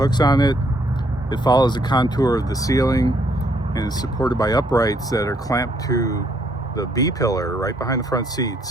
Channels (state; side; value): normal; both; correlation 0.69